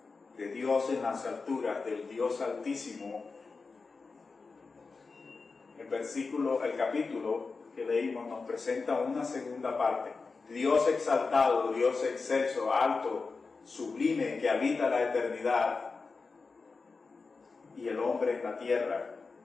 en las alturas, del Dios Altísimo. El capítulo que leímos nos presenta una segunda parte. Dios exaltado, Dios excelso, alto, sublime, que habita la eternidad, y el hombre en la tierra.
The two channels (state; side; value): quieter; right; 4.4 dB